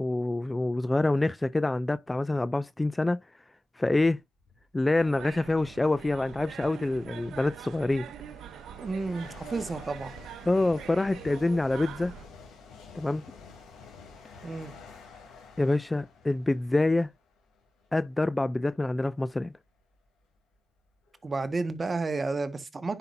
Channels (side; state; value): both; normal; correlation 0.97